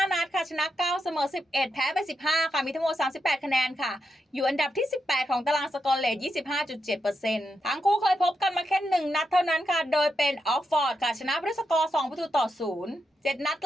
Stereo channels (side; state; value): both; normal; correlation 0.85